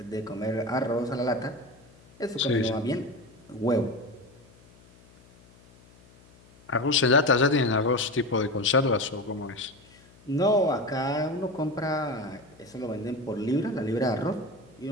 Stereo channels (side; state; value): left; noise; hum, 26 dB below the sound